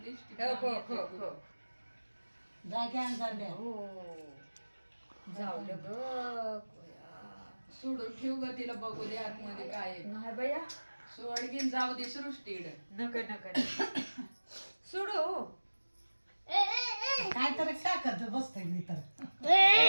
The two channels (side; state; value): both; inverted; correlation -1.00